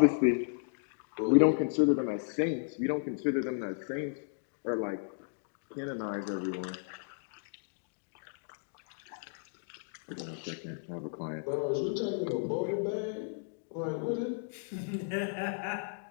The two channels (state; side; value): silent; right; digital silence